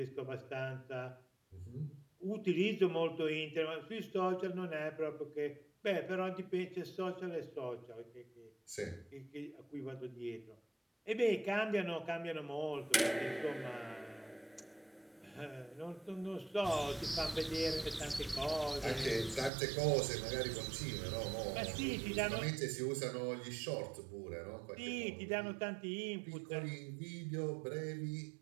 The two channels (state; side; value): drops out; left; at 19.5 s